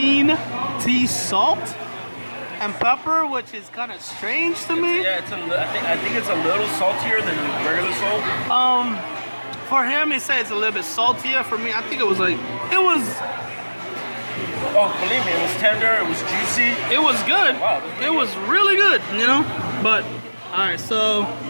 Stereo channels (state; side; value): inverted; both; correlation -1.00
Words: tea salt and pepper, which is kind of strange to me. Yeah, I think it's a little saltier than regular salt. For him, he said it's a little bit saltier. For me, I think it was like, Oh, believe me, it was tender, it was juicy. it was good. Wow, It was really good, you know? But, all right, so